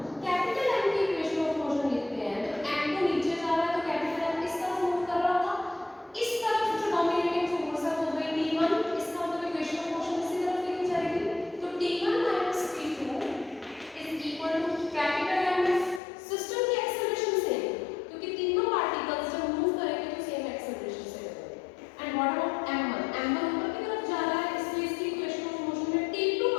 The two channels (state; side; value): drops out; right; at 16.0 s